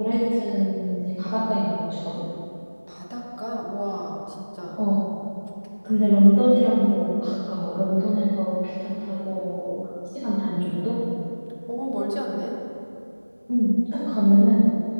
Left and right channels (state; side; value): inverted; both; correlation -1.00